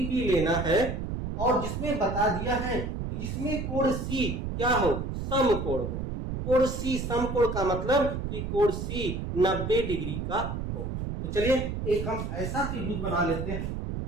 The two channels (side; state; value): right; noise; rumble, 4 dB below the sound